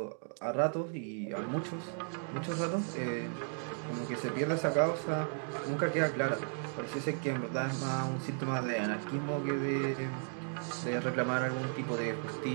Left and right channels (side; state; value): left; silent; 54 dB below the other